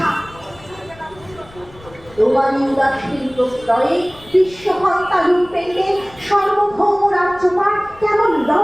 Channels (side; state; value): left; noise; rumble, 23 dB below the sound